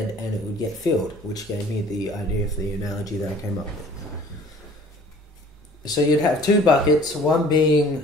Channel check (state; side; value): normal; both; correlation 0.51